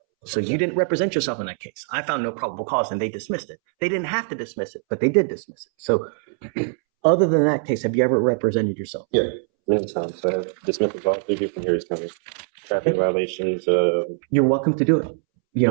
So you didn't represent yourself in that case. I found no probable cause and they dismissed it. They didn't have to dismiss it, but they did dismiss it. So other than that case, have you ever represented yourself? Yeah, many times. I have dismissed all 3 different Harris County traffic violations. You're welcome to do it,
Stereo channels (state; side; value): silent; left; 64 dB below the other